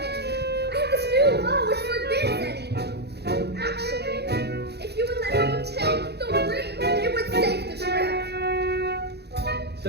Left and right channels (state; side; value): late; left; 0.48 ms